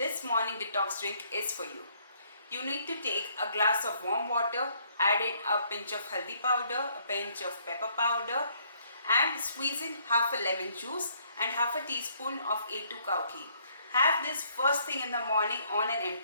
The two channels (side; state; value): both; inverted; correlation -0.66